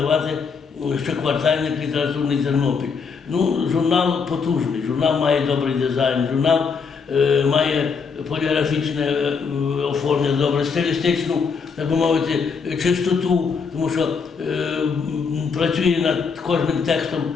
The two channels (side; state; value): right; quieter; 5.5 dB